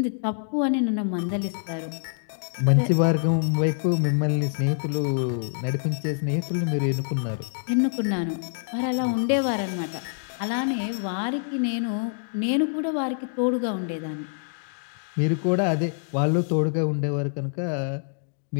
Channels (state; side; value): silent; right; digital silence